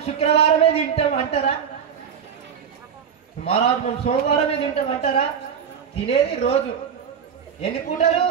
శుక్రవారమే తింటాం అంటారా? మహారాజ్ మేము సోమవారమే తింటాం అంటారా? తినేది రోజు ఎన్ని పూటలు?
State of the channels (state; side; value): quieter; left; 7.6 dB